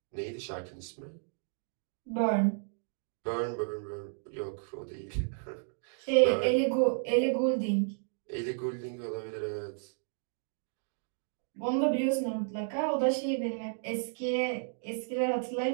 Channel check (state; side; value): silent; left; digital silence